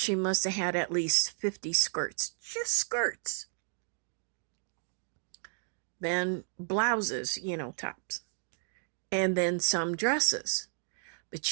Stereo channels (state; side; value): silent; left; digital silence